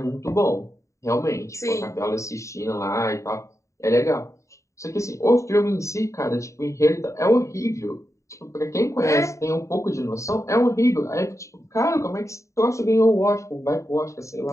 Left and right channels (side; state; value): right; late; 0.15 ms